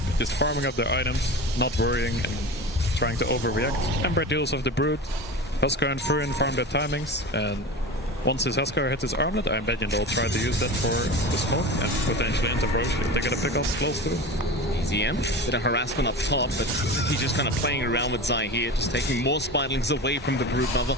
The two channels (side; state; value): both; normal; correlation 0.30